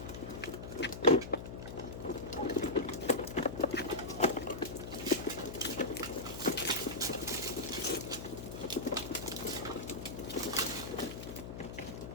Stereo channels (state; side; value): noise; left; hum, 8 dB below the sound